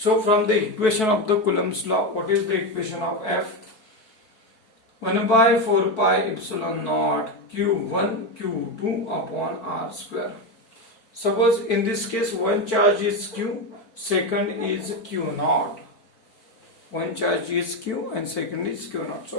from the equation of the Coulomb's law, what is the equation of F? 1 by 4 pi epsilon naught Q1 Q2 upon R square. Suppose in this case one charge is Q, second is Q naught. One charge is Q and second is Q naught.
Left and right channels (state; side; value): late; right; 4.5 ms